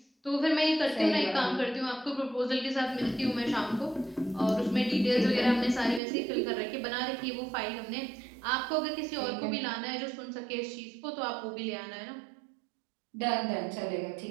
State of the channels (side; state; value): left; drops out; at 6.0 s